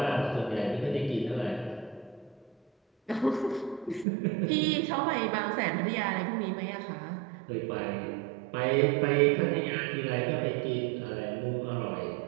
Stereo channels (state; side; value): drops out; left; at 4.0 s